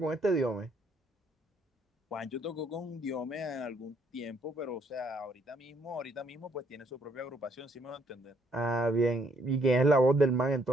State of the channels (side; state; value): both; normal; correlation 0.68